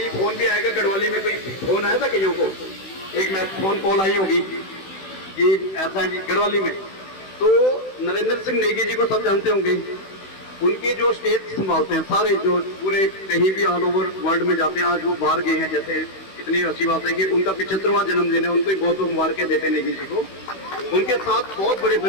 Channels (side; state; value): right; late; 16 ms